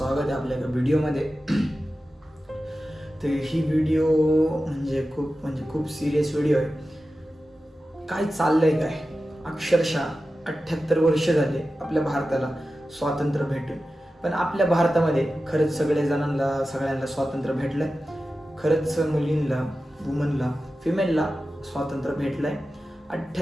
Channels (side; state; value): both; normal; correlation 0.93